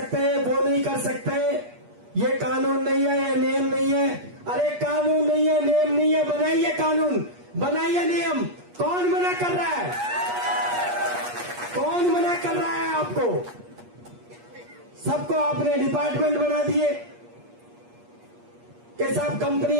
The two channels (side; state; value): left; late; 8.4 ms